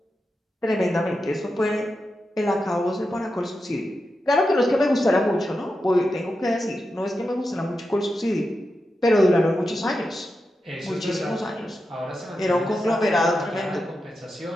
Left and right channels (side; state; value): both; normal; correlation 0.89